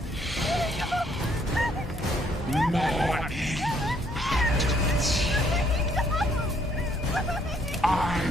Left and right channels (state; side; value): normal; both; correlation 0.67